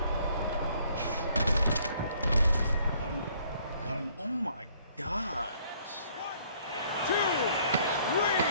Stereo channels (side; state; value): both; inverted; correlation -0.62